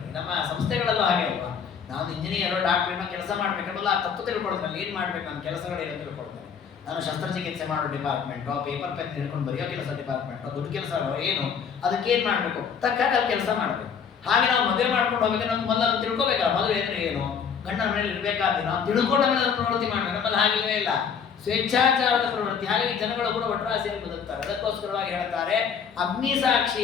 ನಮ್ಮ ಸಂಸ್ಥೆಗಳಲ್ಲೂ ಹಾಗೆ ಅಲ್ವಾ? ನಾನು ಇಂಜಿನಿಯರ್, ಡಾಕ್ಟ್ರಿನ ಕೆಲಸ ಮಾಡ್ಬೇಕಂದ್ರೆ ಆ ತತ್ವ ತಿಳ್ಕೊಳ್ತೇನೆ, ಏನ್ ಮಾಡ್ಬೇಕು, ನನ್ನ ಕೆಲಸಗಳೇನು ತಿಳ್ಕೊಳ್ತೇನೆ. ನಾನು ಶಸ್ತ್ರಚಿಕಿತ್ಸೆ ಮಾಡೋ ಡಿಪಾರ್ಟ್ಮೆಂಟು, ಪೇಪರ್ ಪೆನ್ ಹಿಡ್ಕೊಂಡು ಬರೆಯೋ ಕೆಲಸ ಡಿಪಾರ್ಟ್ಮೆಂಟು, ದುಡ್ಡು ಕೆಲಸ ಏನು, ಅದಕ್ಕೆ ಏನ್ ಮಾಡ್ಬೇಕು, ತಕ್ಕಾಗ ಅಲ್ಲಿ ಕೆಲಸ ಮಾಡ್ಬೇಕು. ಹಾಗೆ ನಾವು ಮದುವೆ ಮಾಡ್ಕೊಂಡು ಹೋಗ್ಬೇಕು, ನಮ್ಗೆ ಮೊದಲು ಅದನ್ನು ತಿಳ್ಕೊಬೇಕಲ್ಲ. ಮದುವೆ ಅಂದ್ರೆ ಏನು, ಗಂಡನ ಮೇಲೆ ಇರಬೇಕಾದ್ರೆ ನಾವು ತಿಳ್ಕೊಂಡ ಮೇಲೆ ಅದನ್ನು ಪ್ರವೃತ್ತಿ ಮಾಡ್ಬೇಕು. ನಮ್ಮಲ್ಲಿ ಹಾಗಿಲ್ಲವೇ ಇಲ್ಲ, ಸ್ವೇಚ್ಛಾಚಾರದ ಪ್ರವೃತ್ತಿ. ಹಾಗಾಗಿ ಜನಗಳು ಕೂಡ ಒಟ್ರಾಸಿಯಾಗಿ ಬದುಕ್ತಾರೆ. ಅದಕ್ಕೋಸ್ಕರವಾಗಿ ಹೇಳ್ತಾರೆ, ಅಗ್ನಿ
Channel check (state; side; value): quieter; right; 6.9 dB